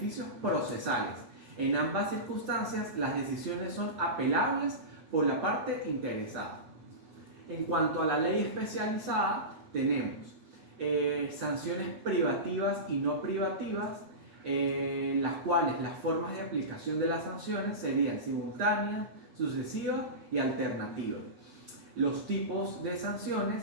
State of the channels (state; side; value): late; left; 8.4 ms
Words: procesales. En ambas circunstancias, las decisiones son apelables por la parte interesada. En cuanto a la ley especializada, tenemos sanciones privativas y no privativas, las cuales las formas de aplicación de las sanciones serían simultáneas, sucesivas y alternativas. Los tipos de